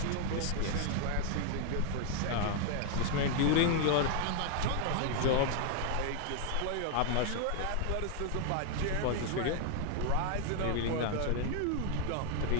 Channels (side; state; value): both; different; correlation 0.00